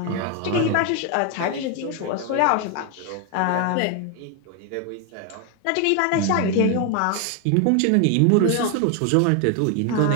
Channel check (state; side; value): different; both; correlation 0.01